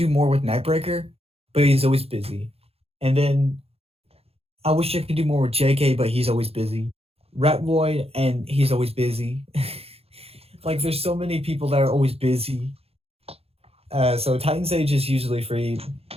more with Nightbreaker, but he's always busy. And then I wish I could do more with JK, but he's always busy. Rat Void, and he's always busy. Like, there's so many people that are always busy. So Titan Sage is usually free,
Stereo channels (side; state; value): left; late; 0.29 ms